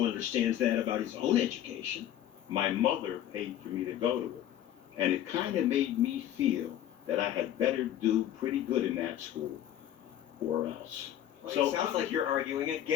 understands that about his own education. My mother paid for me to go to it, and it kind of made me feel that I had better do pretty good in that school, or else. Well, it sounds like you're arguing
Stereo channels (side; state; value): right; quieter; 11.5 dB